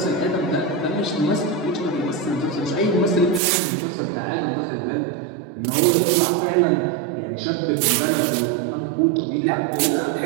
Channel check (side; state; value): left; drops out; at 3.4 s